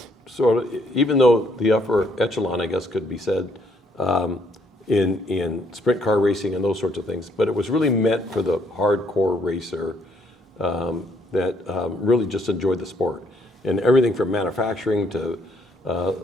even though the upper echelon, I guess, could be said, in sprint car racing and those sorts of things, but it was really meant for the hardcore racer that really just enjoyed the sport. And everything from manufacturing to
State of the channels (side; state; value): both; normal; correlation 0.68